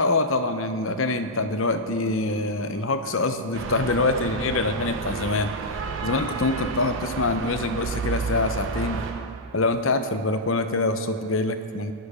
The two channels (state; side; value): normal; both; correlation -0.07